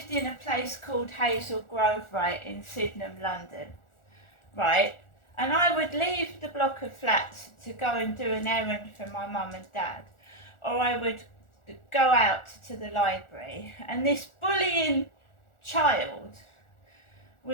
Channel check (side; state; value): right; late; 1.4 ms